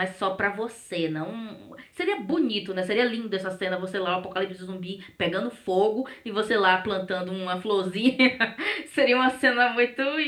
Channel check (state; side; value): identical; both; correlation 1.00